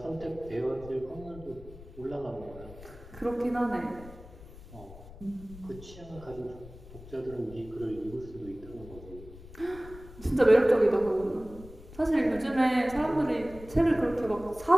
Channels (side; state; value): left; noise; rumble, 17 dB below the sound